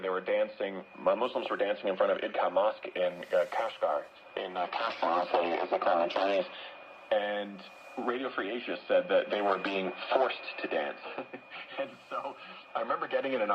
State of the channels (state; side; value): identical; both; correlation 1.00